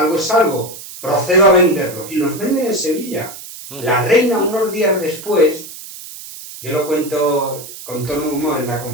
es algo, procedo a venderlos. Y los venden en Sevilla. La reina, unos días después, yo lo cuento con tono de humor en la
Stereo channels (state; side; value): noise; right; hiss, 14 dB below the sound